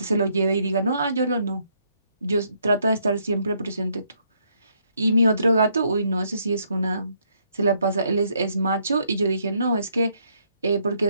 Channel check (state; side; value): inverted; both; correlation -0.71